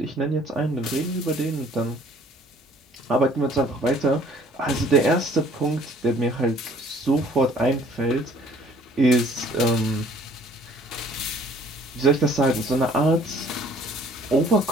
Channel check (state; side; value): normal; both; correlation 0.56